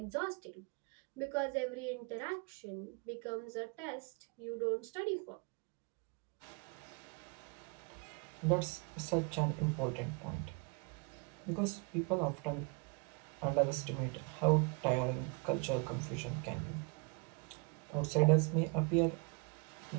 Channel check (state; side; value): quieter; left; 33.7 dB